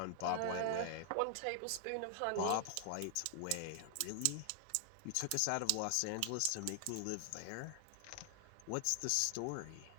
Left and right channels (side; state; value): both; different; correlation 0.00